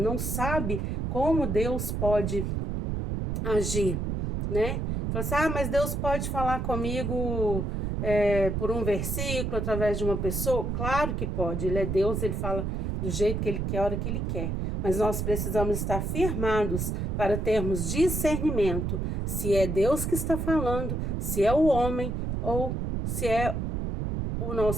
sabe como Deus pode agir, né? Fala assim, mas Deus pode falar comigo por um versículo, através de uma pessoa? Claro que pode, Ele é Deus, Ele fala do jeito que Ele quer, a hora que Ele quer. Mas nós precisamos estar firmados para termos discernimento, se é Deus que está falando, se é o homem ou se é o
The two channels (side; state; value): right; noise; rumble, 1 dB below the sound